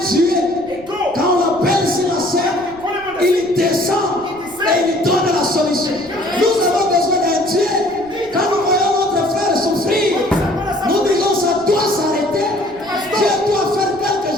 Dieu. a God. Quand on l'appelle sur la scène, il descend et il donne la solution. Nous avons besoin d'un Dieu. Quand nous voyons notre frère souffrir, nous disons ça doit s'arrêter. Dieu doit faire quelque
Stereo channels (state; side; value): noise; right; rumble, 23 dB below the sound